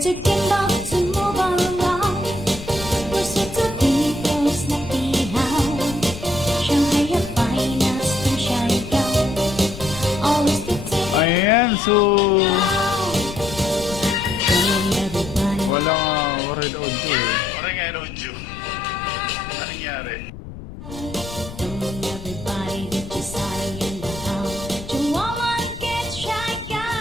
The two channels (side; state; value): left; noise; rumble, 12 dB below the sound